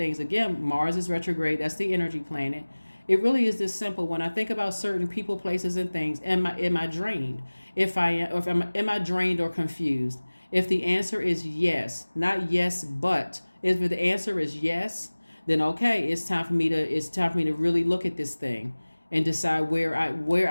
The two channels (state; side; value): inverted; both; correlation -1.00